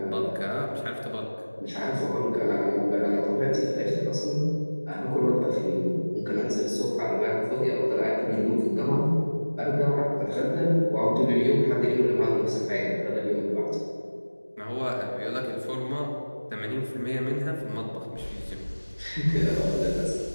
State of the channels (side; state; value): both; inverted; correlation -1.00